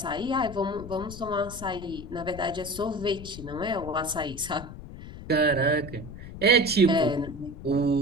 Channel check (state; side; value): noise; left; rumble, 12 dB below the sound